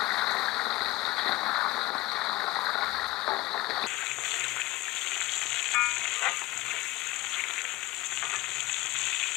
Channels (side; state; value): right; quieter; 19.1 dB